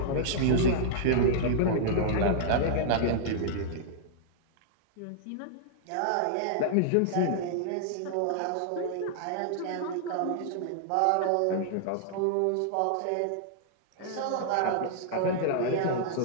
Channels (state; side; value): different; both; correlation -0.01